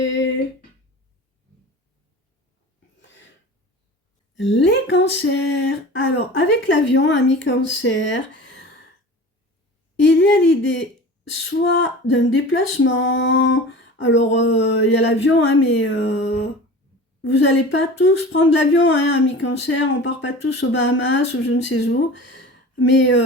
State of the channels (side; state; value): both; normal; correlation 0.36